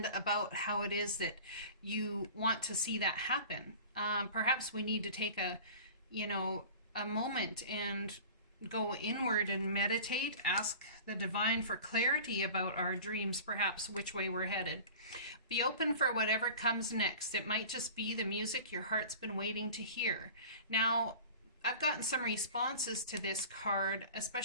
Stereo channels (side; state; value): both; inverted; correlation -0.39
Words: about how it is that you want to see that happen. Perhaps we need to take a moment and go inward and meditate, ask the divine for clarity about our dreams, perhaps which way we're headed. Be open for whatever comes next. It might just be the music your heart's been waiting to hear. Now, I've gotten some responses to this card,